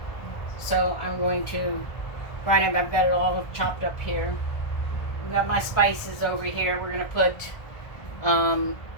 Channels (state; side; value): late; right; 1.3 ms